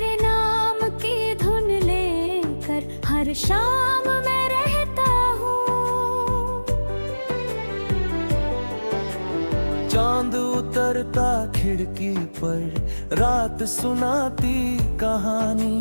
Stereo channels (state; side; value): inverted; both; correlation -1.00